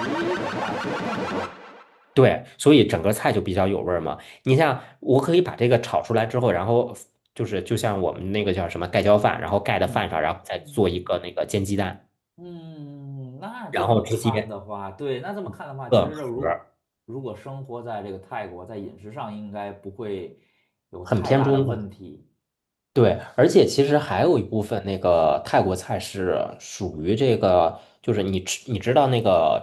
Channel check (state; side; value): identical; both; correlation 1.00